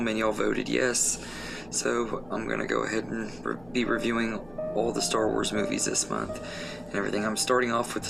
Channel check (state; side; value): noise; left; hum, 23 dB below the sound